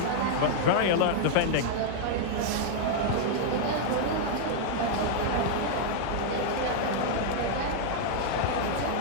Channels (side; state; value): both; different; correlation -0.01